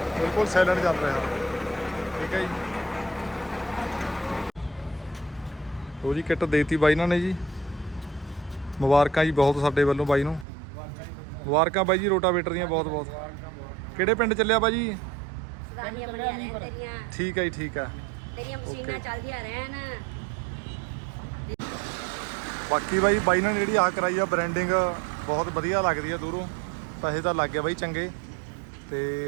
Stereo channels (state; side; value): drops out; left; at 10.5 s